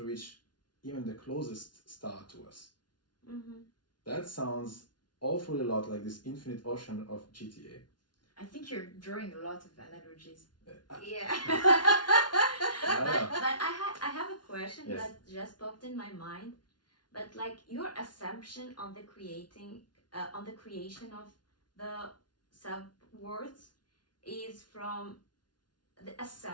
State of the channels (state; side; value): late; right; 0.70 ms